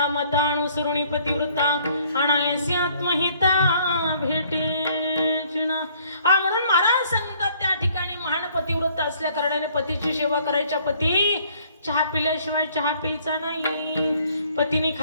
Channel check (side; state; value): both; inverted; correlation -0.61